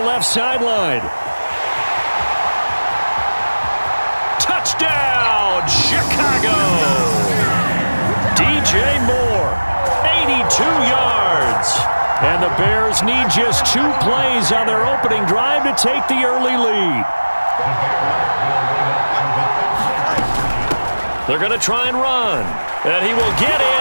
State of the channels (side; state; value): both; inverted; correlation -1.00